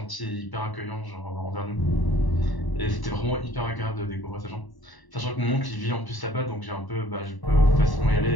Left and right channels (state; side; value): late; right; 1.0 ms